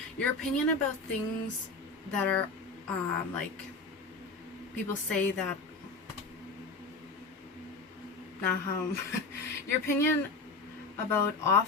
your opinion about things that are, like, people say that, your opinion about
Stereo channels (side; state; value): right; quieter; 3.6 dB